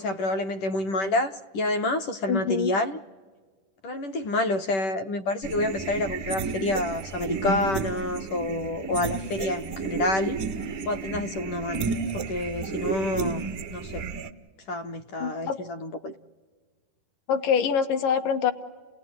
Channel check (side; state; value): right; late; 10 ms